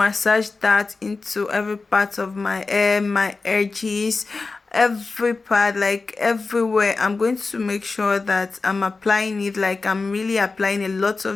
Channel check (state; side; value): quieter; right; 4.0 dB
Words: that into every part of my hair, my edges, every part, like everywhere. I'm going to make sure that I'm applying it, like I'm really applying a lot